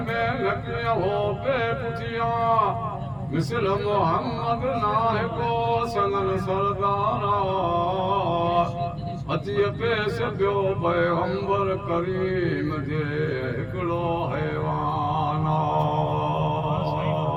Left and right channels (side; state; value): both; identical; correlation 1.00